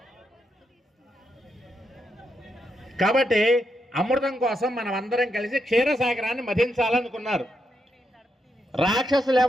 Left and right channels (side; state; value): both; normal; correlation 0.82